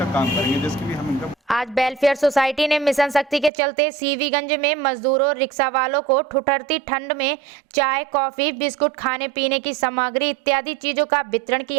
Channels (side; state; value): left; drops out; at 3.5 s